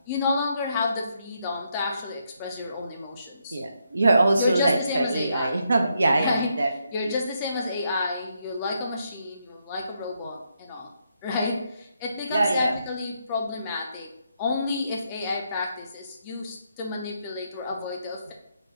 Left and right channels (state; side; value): inverted; both; correlation -0.78